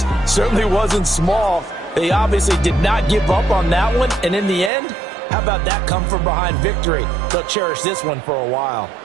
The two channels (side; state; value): left; drops out; at 4.7 s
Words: certainly wasn't small. They obviously did not give up on that one, and in the end, how about that come-from-behind victory? They'll cherish this one for a while.